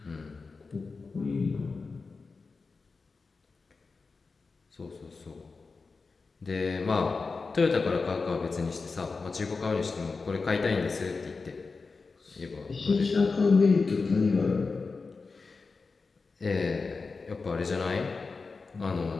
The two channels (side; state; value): right; quieter; 4.3 dB